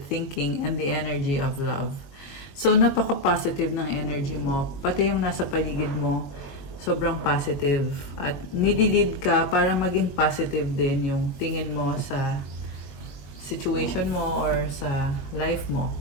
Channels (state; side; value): late; right; 21 ms